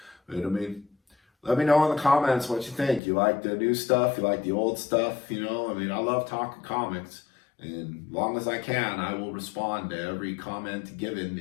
But let me know in the comments what you think. You like the new stuff? You like the old stuff? I love talking comics. And as long as I can, I will respond to every comment given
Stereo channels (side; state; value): right; drops out; at 3.0 s